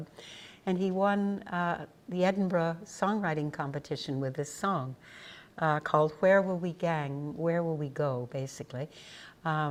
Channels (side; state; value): both; identical; correlation 1.00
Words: and he won the Edinburgh songwriting competition with this song called Where Will We Gang, Where Will We Go, basically.